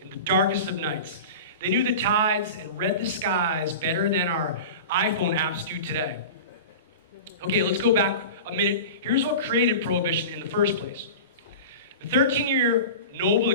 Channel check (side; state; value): both; inverted; correlation -0.32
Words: in the darkest of nights. They knew the tides and read the skies better than our iPhone apps do today. Okay, let's go back a minute. Here's what created Prohibition in the first place. The 13-year noble